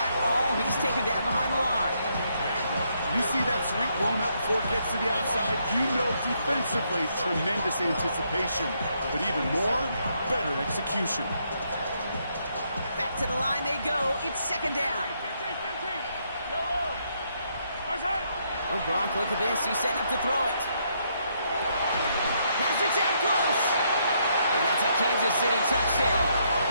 all. He's taken down behind the line. You see that sweep blown up before it gets to the outside, you know defensively, tremendous anticipation. But even more, better execution. Back to the line they go. It's second down. Oh, Gronk, look at this. He's setting up to throw it. Pass it down close. And that's a Kansas City touchdown.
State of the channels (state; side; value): inverted; both; correlation -0.74